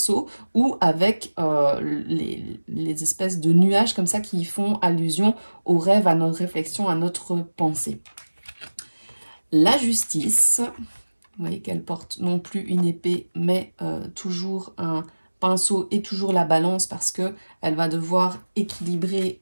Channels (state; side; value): inverted; both; correlation -1.00